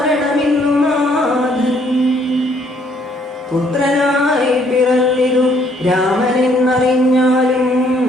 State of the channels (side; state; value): both; normal; correlation 0.65